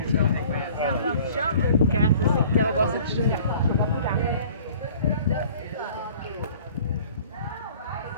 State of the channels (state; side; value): inverted; both; correlation -0.50